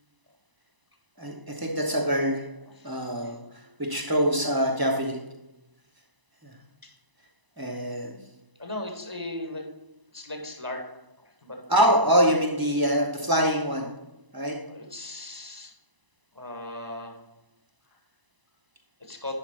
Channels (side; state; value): left; late; 1.0 ms